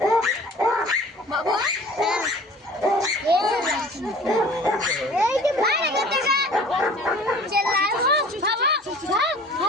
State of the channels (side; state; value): both; normal; correlation 0.47